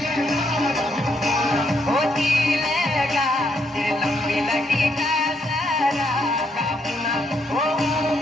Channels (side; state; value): both; normal; correlation 0.75